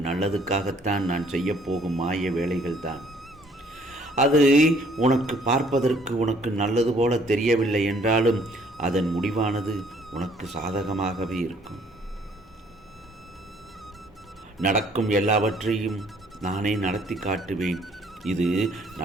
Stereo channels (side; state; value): both; normal; correlation 0.61